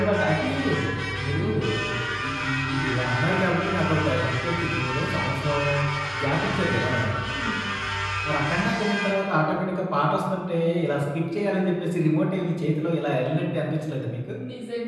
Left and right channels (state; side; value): identical; both; correlation 1.00